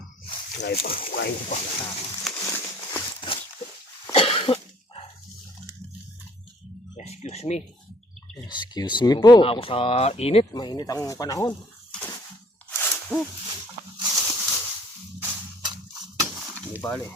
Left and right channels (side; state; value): both; normal; correlation 0.58